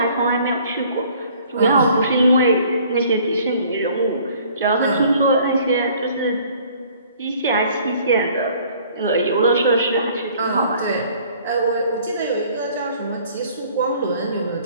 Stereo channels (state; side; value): inverted; both; correlation -0.55